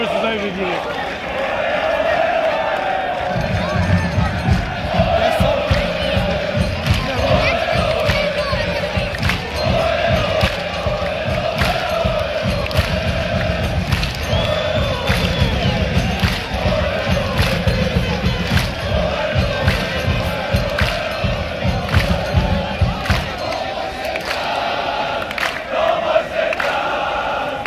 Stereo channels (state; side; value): identical; both; correlation 1.00